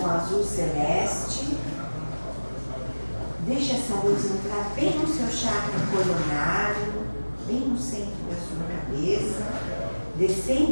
com azul celeste. Deixa essa luz entrar bem no seu chakra coronário, bem no centro da sua cabeça, descendo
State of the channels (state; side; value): inverted; both; correlation -1.00